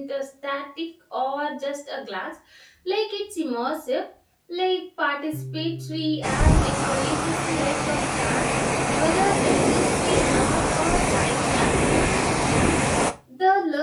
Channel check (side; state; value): both; identical; correlation 1.00